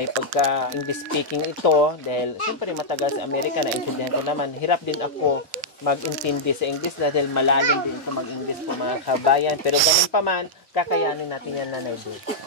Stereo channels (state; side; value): normal; both; correlation -0.07